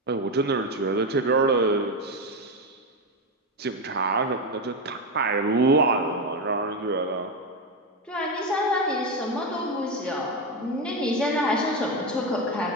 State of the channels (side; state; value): both; normal; correlation 0.12